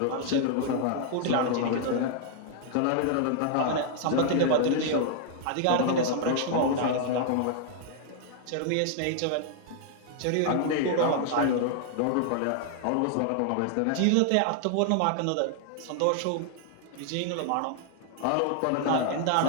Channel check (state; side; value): different; both; correlation 0.00